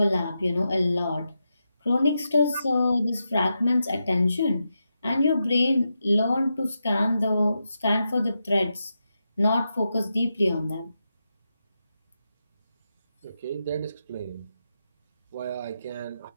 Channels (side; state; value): both; inverted; correlation -0.87